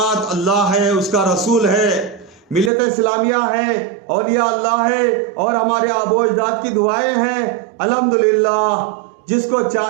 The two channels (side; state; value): left; drops out; at 2.7 s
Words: अल्लाह है, उसका रसूल है, मिल्लत इस्लामिया है, औलिया अल्लाह है और हमारे आबो अजदाद की दुआएं हैं। अल्हम्दुलिल्लाह, जिसको